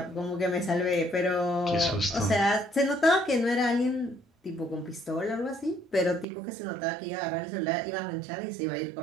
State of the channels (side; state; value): left; drops out; at 6.2 s